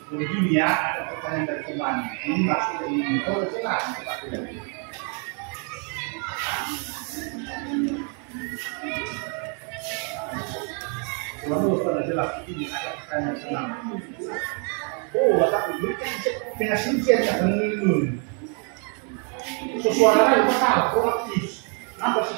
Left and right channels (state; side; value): quieter; left; 39.5 dB